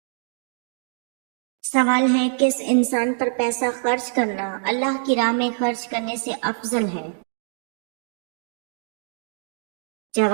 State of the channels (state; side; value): silent; left; digital silence